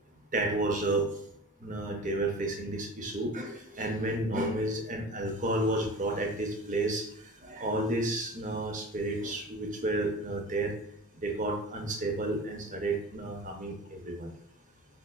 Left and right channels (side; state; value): both; normal; correlation 0.36